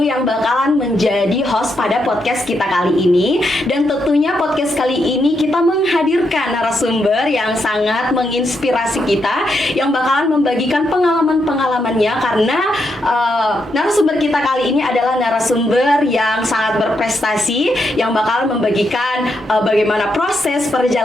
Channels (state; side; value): normal; both; correlation 0.81